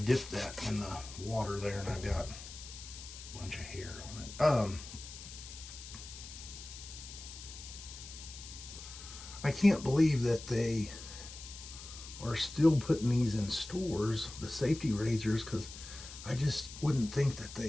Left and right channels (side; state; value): left; noise; hiss, 13 dB below the sound